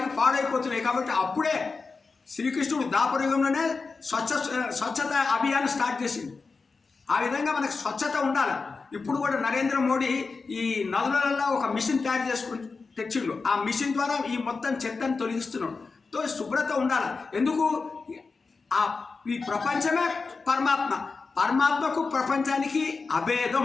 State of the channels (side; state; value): right; quieter; 4.4 dB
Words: పాడైపోతున్నాయి. కాబట్టి అప్పుడే శ్రీకృష్ణుడు దాపరయుగంలోనే స్వచ్ఛత అభియాన్ స్టార్ట్ చేసింది. ఆ విధంగా మనకు స్వచ్ఛత ఉండాలి. ఇప్పుడు కూడా నరేంద్ర మోడీ ఈ నదులలో ఒక మిషన్ తయారు తెచ్చిండు. ఆ మిషన్ ద్వారా ఈ మొత్తం చెత్తను తొలగిస్తున్నాడు. శుభ్రత ఉండాలి. ఎందుకు? ఈ ప్రపంచమే పరమాత్మ, పరమాత్మకు ప్రపంచానికి